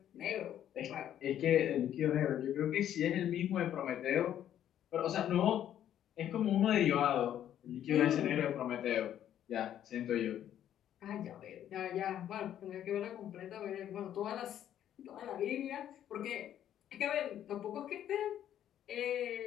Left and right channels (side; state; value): right; quieter; 10.8 dB